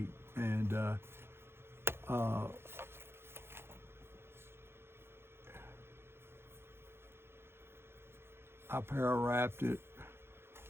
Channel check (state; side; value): late; left; 0.11 ms